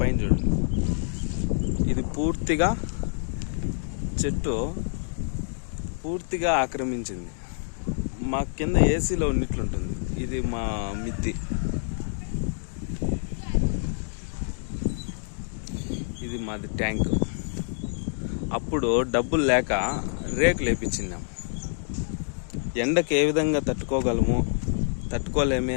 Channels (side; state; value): right; silent; digital silence